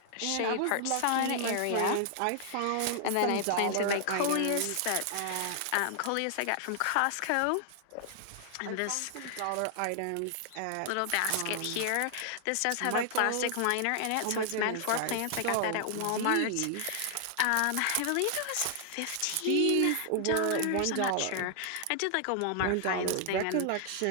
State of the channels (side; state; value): both; different; correlation 0.00